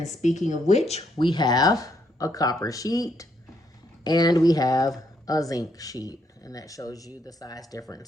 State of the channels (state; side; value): normal; both; correlation 0.74